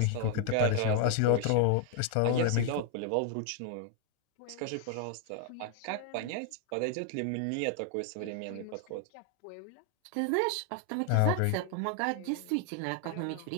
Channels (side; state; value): both; different; correlation 0.00